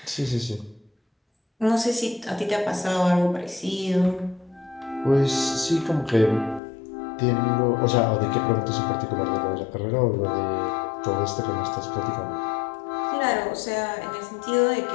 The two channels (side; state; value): right; drops out; at 6.6 s